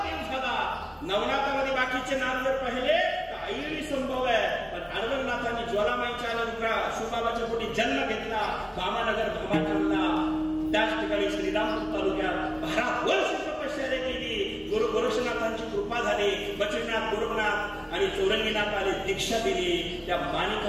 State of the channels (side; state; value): both; identical; correlation 1.00